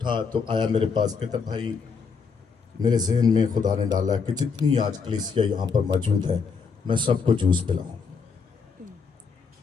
तो आया मेरे पास, कहता भाई मेरे जहन में खुदा ने डाला कि जितनी आज कलीसिया यहाँ पर मौजूद है मैं सबको जूस पिलाऊं।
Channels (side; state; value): right; quieter; 5.5 dB